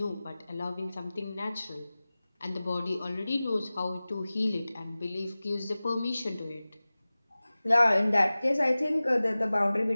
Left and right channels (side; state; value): both; inverted; correlation -0.98